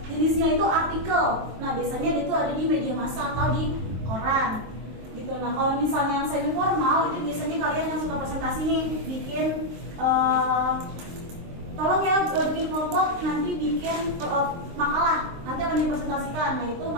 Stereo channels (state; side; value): late; left; 23 ms